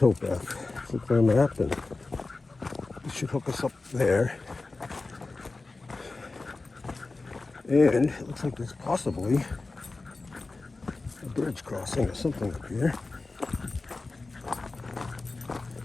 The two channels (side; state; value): right; quieter; 3.5 dB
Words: Look at the map, and it should hook us up there. And it looks like there's possibly a bridge crossing or something up here.